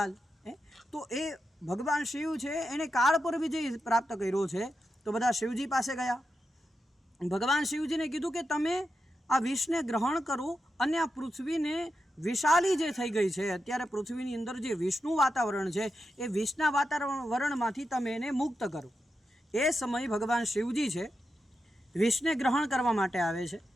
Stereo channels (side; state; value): both; normal; correlation 0.88